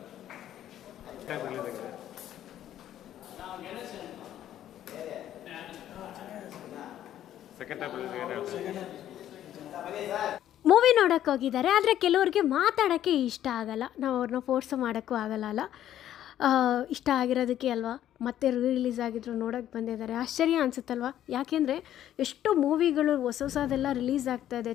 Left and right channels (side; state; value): right; quieter; 11.7 dB